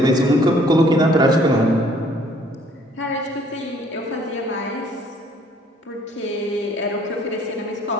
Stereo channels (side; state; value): both; normal; correlation 0.60